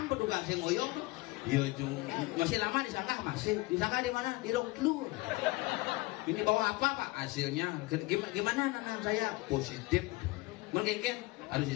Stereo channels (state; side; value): quieter; right; 22.2 dB